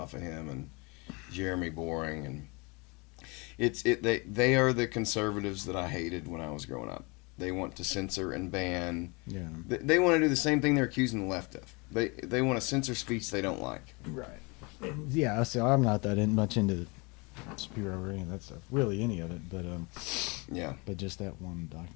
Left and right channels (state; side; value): quieter; right; 28.6 dB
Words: of him, and Jeremy Boring, and they are the conservatives that I hated when I was growing up. They want to censor and ban. Yeah. They want to do the same thing they're accusing the left of. They want to censor speech they don't like. Right. Yeah. So I'm not that much into Spiro or any of that stuff. Really, any of it. But Yeah. but just that one